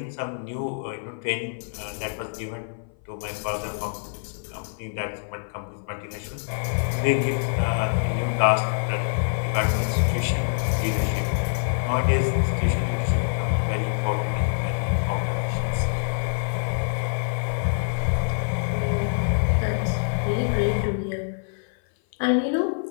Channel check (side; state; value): right; silent; 57 dB below the other